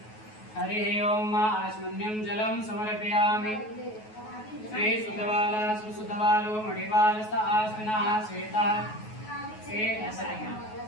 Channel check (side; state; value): right; late; 9.3 ms